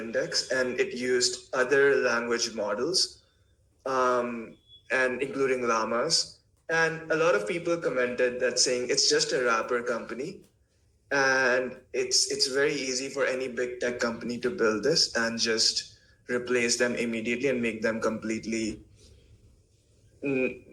and it used other language models, and including llamas. And a lot of people commented that saying it's just a wrapper company, and it's very easy for any big tech company to build this and just replace them immediately and make them completely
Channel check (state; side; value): identical; both; correlation 1.00